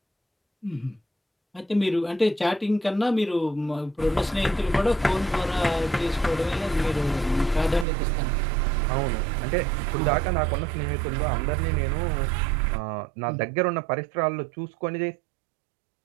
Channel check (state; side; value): drops out; left; at 7.9 s